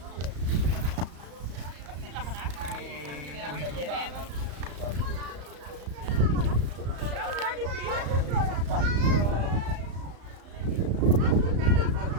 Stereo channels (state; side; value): late; left; 34 ms